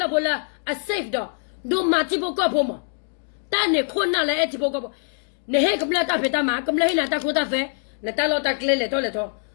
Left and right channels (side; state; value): right; silent; digital silence